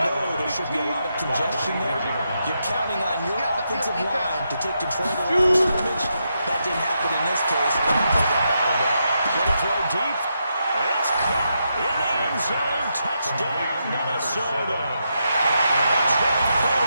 there should be a lot of congestion there. You're counting on your offensive line to take control of the line of scrimmage. That didn't happen in this case. And the play got battled up. Going to throw deep. It's caught in the end zone. Touchdown, Minnesota.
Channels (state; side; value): inverted; both; correlation -0.83